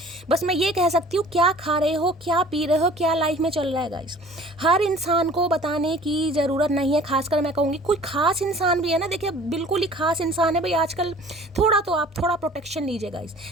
बस मैं ये कह सकती हूँ, क्या खा रहे हो, क्या पी रहे हो, क्या लाइफ में चल रहा है गाइस, हर इंसान को बताने की ज़रूरत नहीं है। खासकर मैं कहूँगी कोई खास इंसान भी है ना, देखिए बिल्कुल ही खास इंसान है भाई आजकल, थोड़ा तो आप थोड़ा प्रोटेक्शन लीजिए गाइस,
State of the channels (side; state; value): both; normal; correlation 0.48